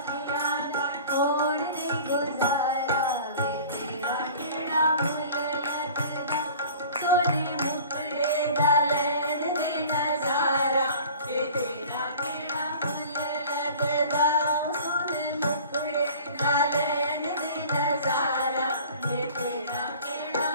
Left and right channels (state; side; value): inverted; both; correlation -0.44